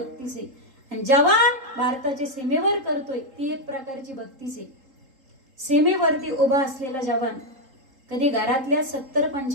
आहे. आणि जवान भारताच्या सीमेवर करतोय ती एक प्रकारची भक्तीच आहे. सीमेवरती उभा असलेला जवान कधी घरातल्या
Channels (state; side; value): late; left; 3.8 ms